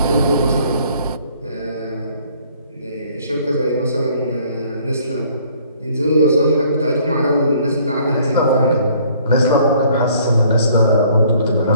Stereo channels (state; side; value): inverted; both; correlation -0.59